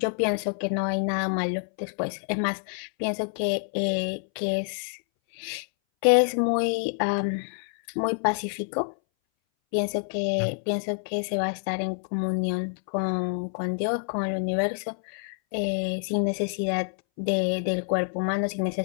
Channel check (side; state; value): right; silent; 59 dB below the other